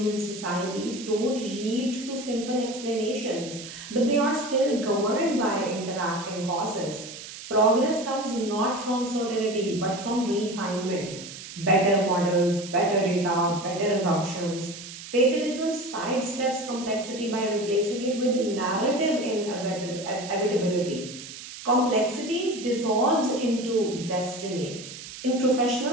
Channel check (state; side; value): noise; right; hiss, 13 dB below the sound